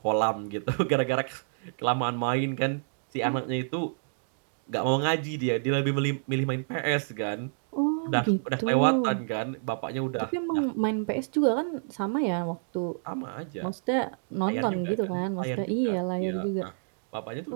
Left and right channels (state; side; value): silent; left; digital silence